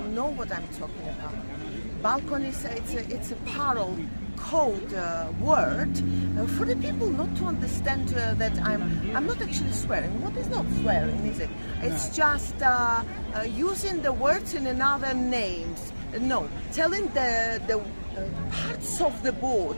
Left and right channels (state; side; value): inverted; both; correlation -1.00